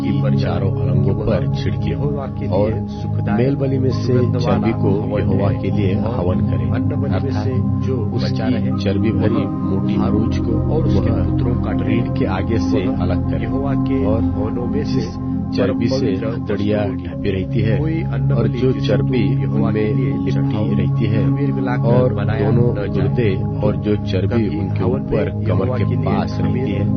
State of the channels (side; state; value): both; identical; correlation 1.00